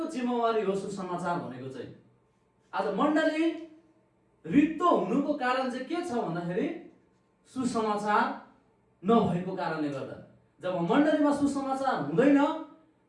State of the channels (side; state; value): both; identical; correlation 1.00